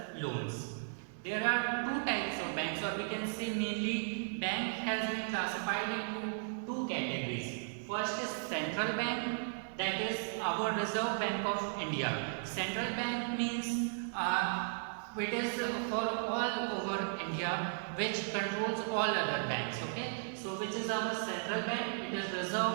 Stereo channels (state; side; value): silent; left; digital silence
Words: loans. There are two types of banks, or we can say mainly bank has been classified into two categories. First is central bank, that is our Reserve Bank of India. Central bank means it is for all over India which controls all other banks. Okay, so which is our central bank? It is